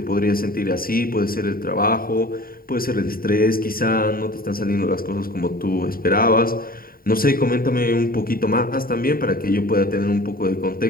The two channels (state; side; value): late; right; 0.43 ms